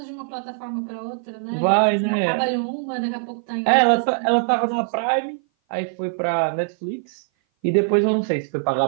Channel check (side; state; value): left; silent; 58 dB below the other